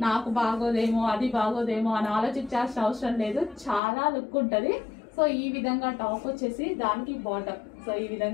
నాకు బాగోదేమో అది బాగోదేమో అని ఆలోచించాల్సిన అవసరం లేదు, చాలా లుక్ ఉంటుంది. సో ఈ విధంగా టాప్ వచ్చేసి దానికి బాటం. సో ఈ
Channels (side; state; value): right; drops out; at 3.8 s